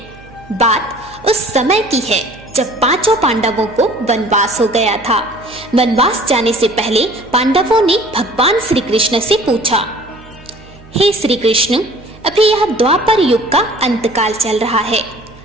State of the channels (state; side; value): noise; right; hum, 23 dB below the sound